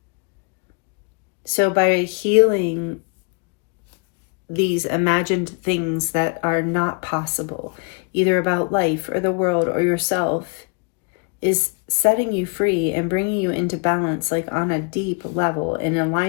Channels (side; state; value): right; quieter; 34.0 dB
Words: So by healing these imagined things that are not possible, either about life or the world or yourself, is setting you free and bringing you into balance, like on a deep level, in